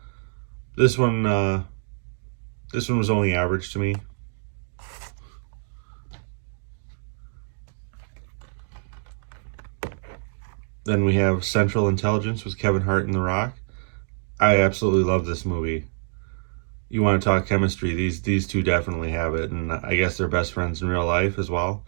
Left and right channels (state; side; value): silent; left; digital silence